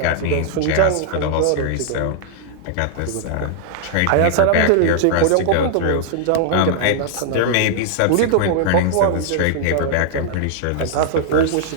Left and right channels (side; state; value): both; different; correlation -0.01